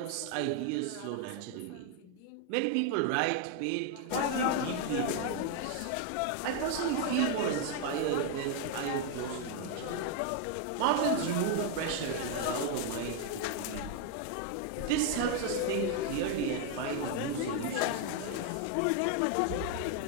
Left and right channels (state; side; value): different; both; correlation 0.00